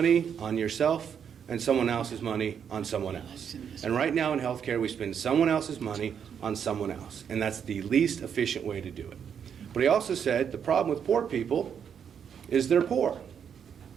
on yourself, and someone else's money on someone else. And right now in healthcare, we spend someone else's money on someone else, and that's the least efficient way to do it. But he also said the problem with poor people is they're poor.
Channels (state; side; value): quieter; left; 7.8 dB